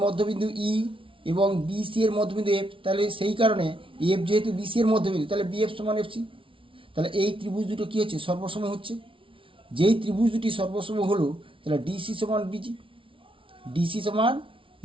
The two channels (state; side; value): late; left; 0.25 ms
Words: মধ্যবিন্দু ই এবং বিসি এর মধ্যবিন্দু এফ, তাহলে সেই কারণে এফ যেহেতু বিসি এর মধ্যবিন্দু, তাহলে বিএফ সমান এফসি। তাহলে এই ত্রিভুজ দুটো কী হচ্ছে, সর্বসম হচ্ছে। যেই ত্রিভুজ দুটি সর্বসম হলো, তাহলে ডিসি সমান বিজি, ডিসি সমান